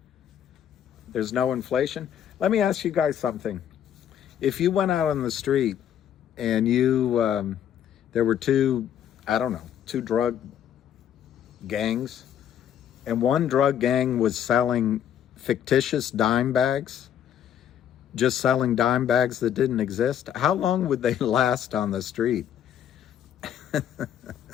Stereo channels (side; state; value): right; quieter; 9.8 dB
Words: There's no inflation? Let me ask you guys something. If you went out on the street and you, there were two drug gangs, and one drug gang was selling fictitious dime bags, just selling dime bags that didn't exist, how long would they last on the street?